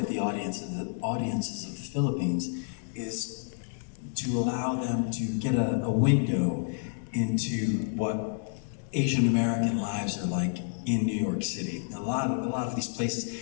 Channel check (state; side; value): silent; right; digital silence